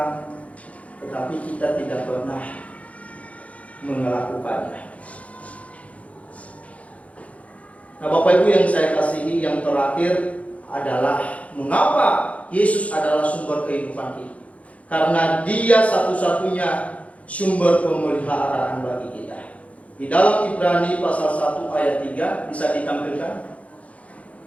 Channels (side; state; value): right; late; 0.066 ms